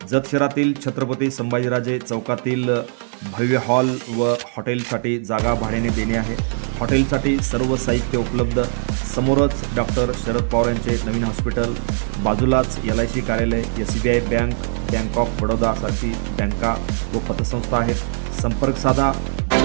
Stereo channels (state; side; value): silent; left; 64 dB below the other